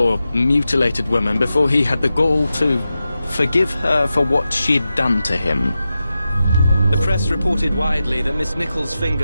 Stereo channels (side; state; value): both; inverted; correlation -0.92